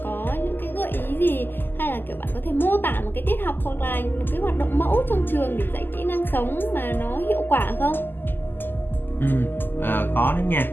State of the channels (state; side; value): late; right; 0.093 ms